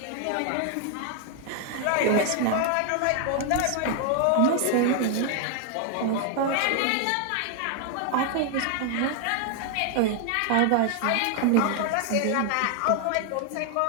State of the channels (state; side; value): different; both; correlation 0.00